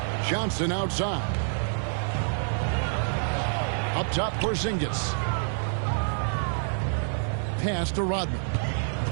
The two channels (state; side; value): silent; left; digital silence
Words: Johnson outside. Up top, Porzingis. Pass to Rodman.